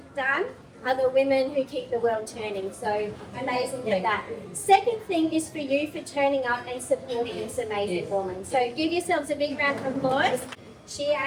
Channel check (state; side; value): identical; both; correlation 1.00